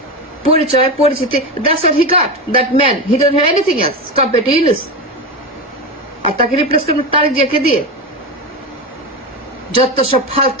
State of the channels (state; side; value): normal; both; correlation 0.18